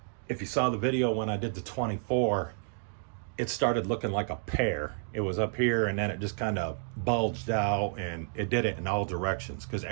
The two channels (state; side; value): silent; left; digital silence